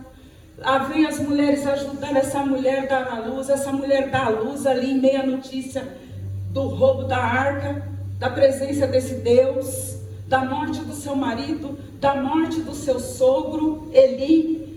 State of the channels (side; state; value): both; identical; correlation 1.00